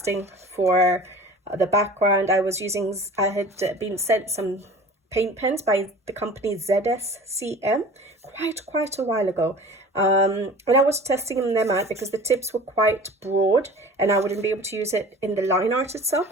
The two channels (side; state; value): both; normal; correlation 0.41